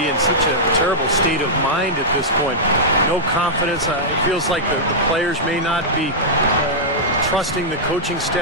in such a terrible state of mind at this point. No confidence. It feels like the players may not be trusting the coaching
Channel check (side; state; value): both; normal; correlation -0.10